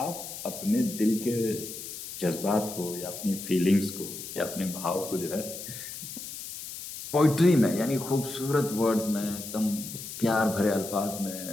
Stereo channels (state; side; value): noise; left; hiss, 10 dB below the sound